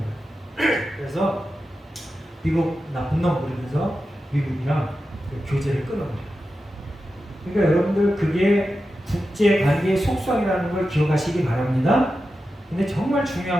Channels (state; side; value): normal; both; correlation 0.91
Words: 그래서 미국 나쁜 놈 부르면서 미국이랑 교제를 끊어버려요. 그러니까 여러분들 그게 국제 관계의 속성이라는 걸 기억하시기 바랍니다. 근데 정말